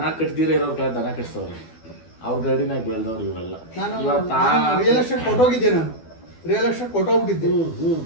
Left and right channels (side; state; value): right; late; 12 ms